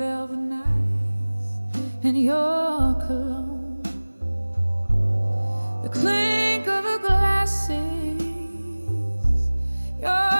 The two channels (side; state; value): both; inverted; correlation -1.00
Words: nights and your cologne, the clink of the glasses,